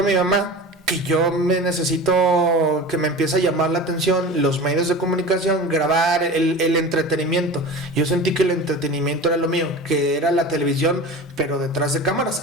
mi mamá que yo necesito que me empiece a llamar la atención los medios de comunicación, grabar el entretenimiento. Yo sentí que el entretenimiento era lo mío, que era la televisión, pero detrás de cámaras,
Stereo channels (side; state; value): both; normal; correlation 0.33